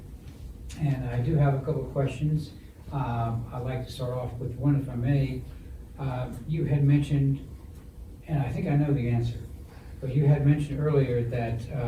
And I do have a couple of questions. I'd like to start off with one, if I may. You had mentioned, and I think I know the answer, but you had mentioned earlier that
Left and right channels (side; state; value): both; identical; correlation 1.00